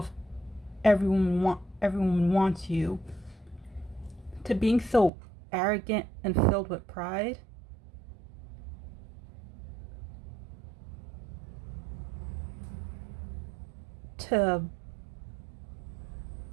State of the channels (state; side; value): drops out; left; at 5.1 s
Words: everyone wants you, to being so arrogant and filled with pride. To